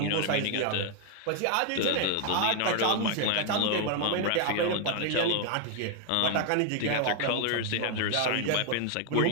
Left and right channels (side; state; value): both; different; correlation 0.00